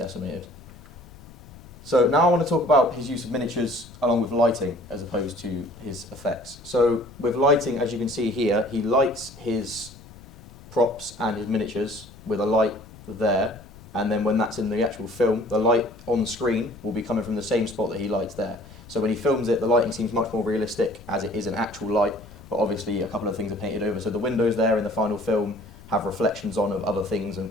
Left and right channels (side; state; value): left; noise; rumble, 20 dB below the sound